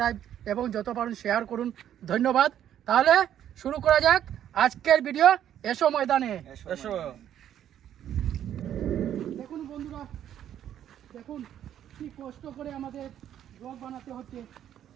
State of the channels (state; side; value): quieter; left; 10.6 dB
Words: এবং যত পারেন শেয়ার করুন। ধন্যবাদ। তাহলে শুরু করা যাক আজকের ভিডিও। এসো ময়দানে, এসো। দেখুন বন্ধুরা, দেখুন কি কষ্ট করে আমাদের ব্লগ বানাতে হচ্ছে।